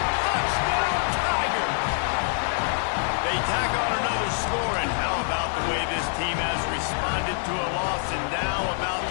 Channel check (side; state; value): right; silent; 61 dB below the other